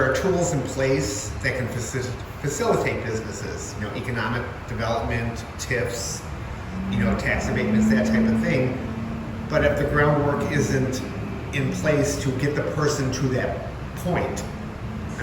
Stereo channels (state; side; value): identical; both; correlation 1.00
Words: are tools in place that can facilitate businesses, you know, economic development, TIFs, you know, tax abatements, that type of thing. But if the groundwork isn't in place to get the person to that point. I